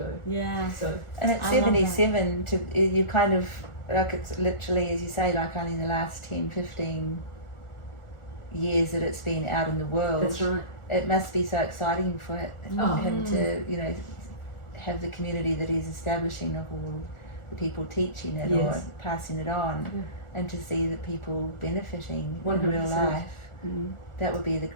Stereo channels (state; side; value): late; right; 1.4 ms